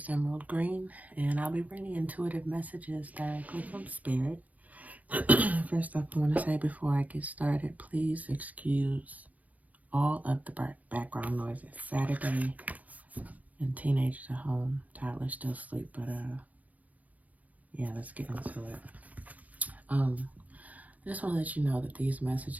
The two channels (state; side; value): late; left; 0.076 ms